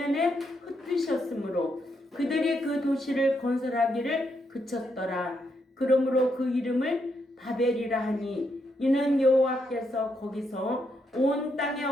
흩으셨으므로 그들이 그 도시를 건설하기를 그쳤더라. 그러므로 그 이름을 바벨이라 하니 이는 여호와께서 거기서 온 땅의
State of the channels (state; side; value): normal; both; correlation 0.79